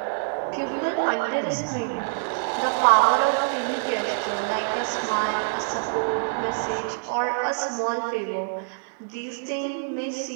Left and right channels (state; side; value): silent; left; digital silence